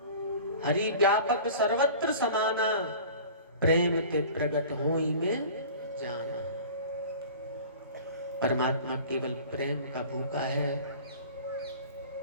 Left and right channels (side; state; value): both; inverted; correlation -0.41